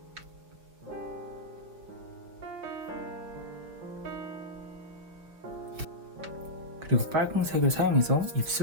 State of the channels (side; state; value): left; late; 6.2 ms